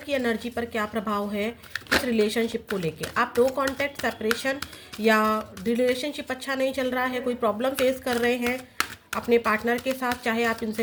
एनर्जी पर क्या प्रभाव है इस रिलेशनशिप को लेके। आप नो कॉन्टैक्ट, सेपरेशन या रिलेशनशिप अच्छा नहीं चल रहा है, कोई प्रॉब्लम फेस कर रहे हैं अपने पार्टनर के साथ, चाहे आप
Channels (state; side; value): identical; both; correlation 1.00